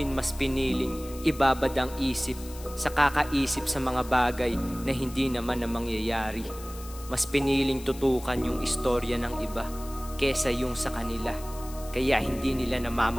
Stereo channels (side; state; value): left; noise; hiss, 17 dB below the sound